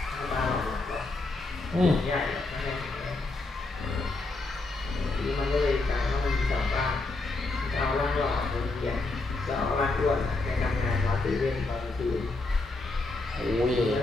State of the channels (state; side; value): quieter; right; 3.2 dB